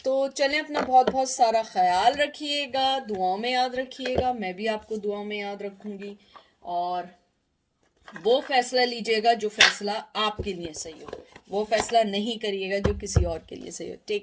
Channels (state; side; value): identical; both; correlation 1.00